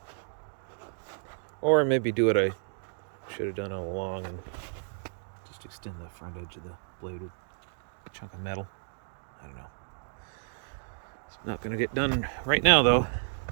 Or maybe do what I should have done all along and just extend the front edge of the blade with a chunk of metal. I don't know. It's not going to get done right now though.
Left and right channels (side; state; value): left; silent; digital silence